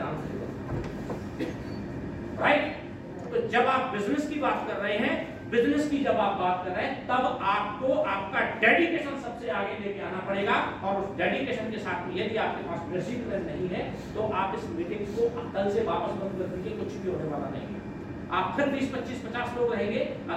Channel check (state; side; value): identical; both; correlation 1.00